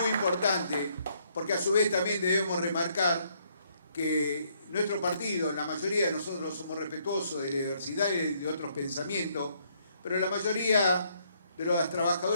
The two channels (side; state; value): both; inverted; correlation -0.70